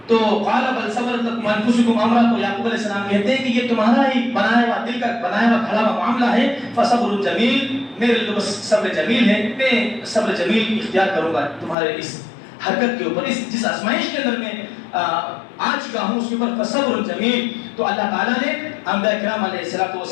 تو قال بل صبرت انفسکم امرا, تو یعقوب علیہ السلام کہتے ہیں کہ یہ تمہارا ہی بنایا ہوا دل کا بنایا ہوا کھڑا ہوا معاملہ ہے. فصبر جمیل, میرے لیے تو بس صبر جمیل ہے, میں صبر جمیل اختیار کروں گا تمہارے اس حرکت کے اوپر, اس جس آزمائش کے اندر میں آ چکا ہوں اس کے اوپر. فصبر جمیل. تو اللہ تعالیٰ نے انبیاء کرام علیہ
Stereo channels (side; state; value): right; drops out; at 11.8 s